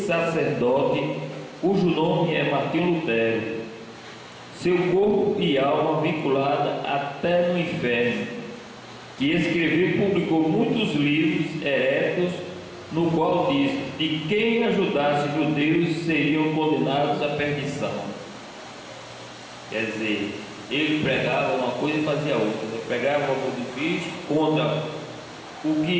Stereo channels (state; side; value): identical; both; correlation 1.00